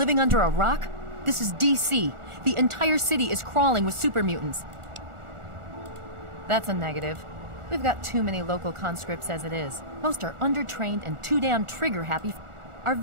under a rock? This is DC. The entire city is crawling with super mutants. That's a negative. We've got too many local conscripts as it is. Most are undertrained and too damn trigger-happy. Our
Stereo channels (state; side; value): late; left; 1.4 ms